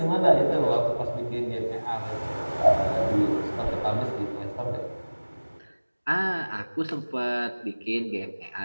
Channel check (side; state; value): both; inverted; correlation -1.00